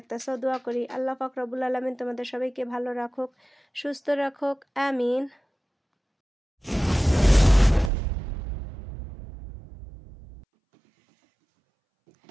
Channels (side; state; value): left; drops out; at 7.9 s